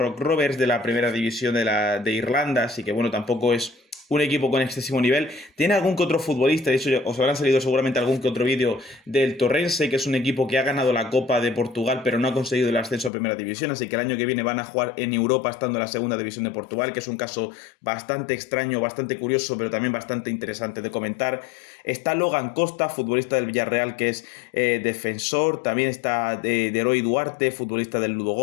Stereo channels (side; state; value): right; drops out; at 13.1 s